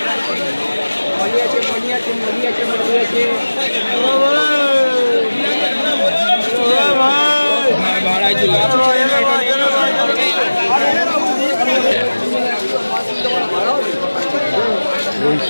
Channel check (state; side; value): inverted; both; correlation -1.00